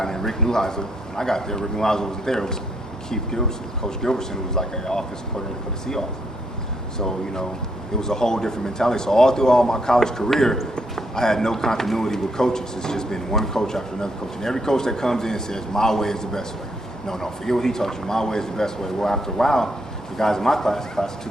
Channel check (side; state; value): both; normal; correlation 0.74